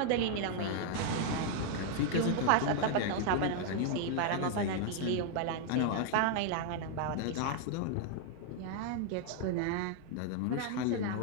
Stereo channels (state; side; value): different; both; correlation 0.00